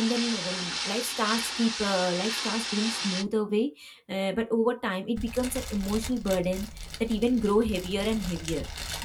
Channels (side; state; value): both; identical; correlation 1.00